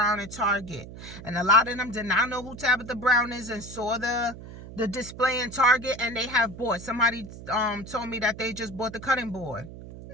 at Target, and a lot of them did not know who Tabitha Brown is and saw the display in Target, and they have bought. Somebody told me that they just bought the cutting board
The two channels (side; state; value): right; noise; hum, 14 dB below the sound